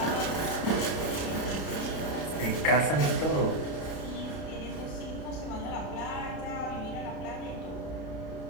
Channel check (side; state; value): right; late; 32 ms